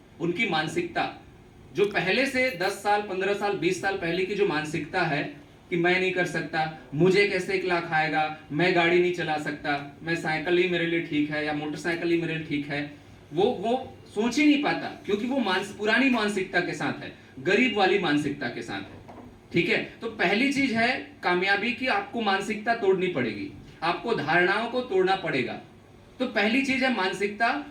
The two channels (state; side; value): identical; both; correlation 1.00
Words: उनकी मानसिकता, जो पहले से 10 साल 15 साल 20 साल पहले की जो मानसिकता है कि मैं नहीं कर सकता, मुझे कैसे 1 लाख आएगा, मैं गाड़ी नहीं चला सकता, मैं साइकिल ही मेरे लिए ठीक है या मोटरसाइकिल ही मेरे लिए ठीक है, वो सोच ही नहीं पाता, क्योंकि वो पुरानी मानसिकता के साथ है, गरीब वाली मानसिकता के साथ है, ठीक है। तो पहली चीज है कामयाबी की, आपको मानसिकता तोड़नी पड़ेगी, आपको धारणाओं को तोड़ना पड़ेगा। तो पहली चीज है मानसिकता।